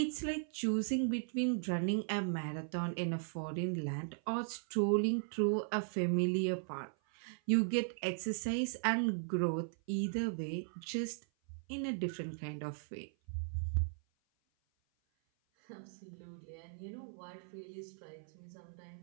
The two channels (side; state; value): left; silent; 52 dB below the other